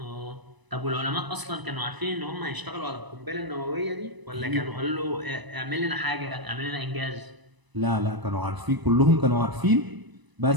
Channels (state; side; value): late; left; 1.0 ms